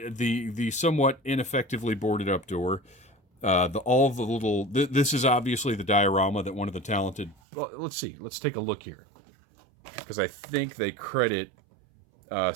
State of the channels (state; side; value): drops out; left; at 7.4 s